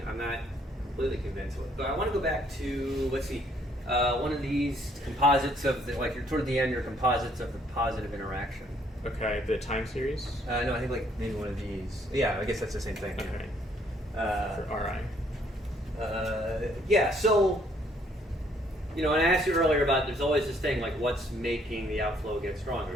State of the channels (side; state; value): both; normal; correlation 0.66